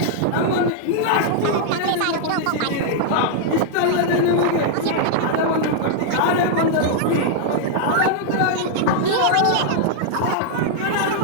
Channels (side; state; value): both; different; correlation -0.01